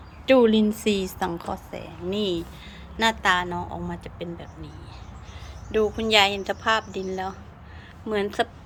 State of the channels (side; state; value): both; identical; correlation 1.00